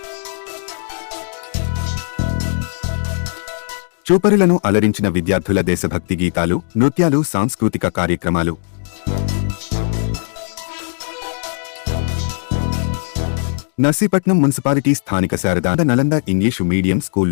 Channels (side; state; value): right; silent; digital silence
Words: చూపరులను అలరించిన విద్యార్థుల దేశభక్తి గీతాలు, నృత్యాలు, సాంస్కృతిక కార్యక్రమాలు. నర్సీపట్నం మున్సిపాలిటీ స్థానిక శారదా నలంద ఇంగ్లీషు మీడియం